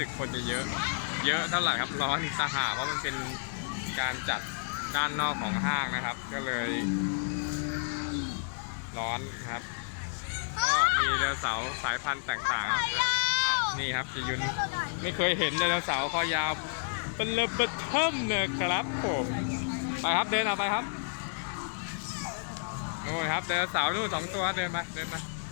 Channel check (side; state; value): right; silent; digital silence